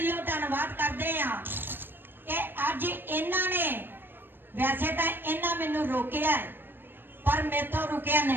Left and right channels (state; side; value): late; left; 0.097 ms